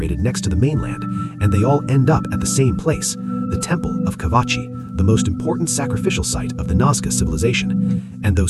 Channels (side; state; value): both; identical; correlation 1.00